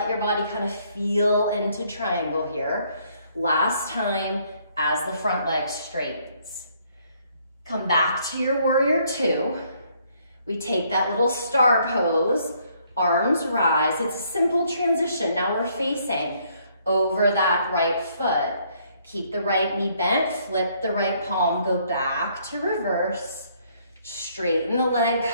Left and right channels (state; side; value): inverted; both; correlation -0.67